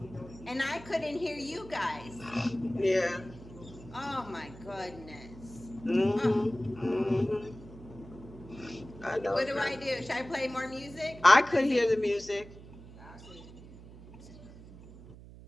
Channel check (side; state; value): right; noise; hum, 17 dB below the sound